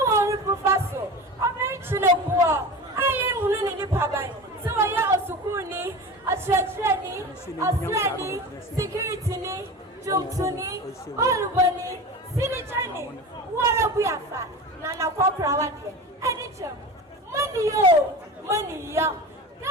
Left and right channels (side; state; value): both; normal; correlation 0.31